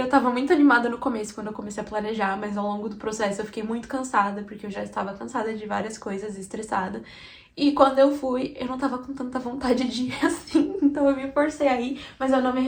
tava muito animada no começo quando eu comecei a planejar, mas ao longo do processo eu fiquei muito cansada, porque eu já estava cansada de várias coisas e estressada. E quando eu fui, eu não tava com tanta vontade de ir assim, então eu me forcei a ir, mas eu não me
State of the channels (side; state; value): both; identical; correlation 1.00